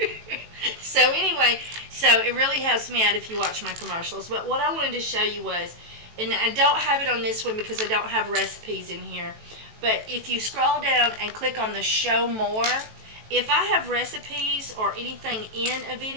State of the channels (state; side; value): late; left; 18 ms